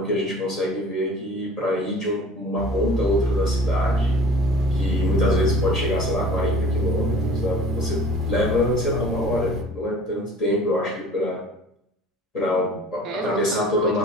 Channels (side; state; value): both; normal; correlation 0.46